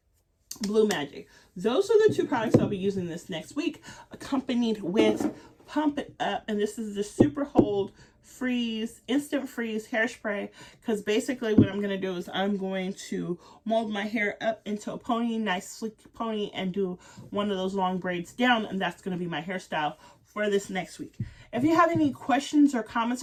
Blue Magic. Those are the two products I'll be using this next week, accompanied with Pump It Up, and this is the Super Hold Instant Freeze hairspray, because basically what I'm going to do is I'm going to mold my hair up into a pony, nice sleek pony, and do one of those long braids down, and that's going to be my hairstyle for this next week. If you have any questions or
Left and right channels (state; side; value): identical; both; correlation 1.00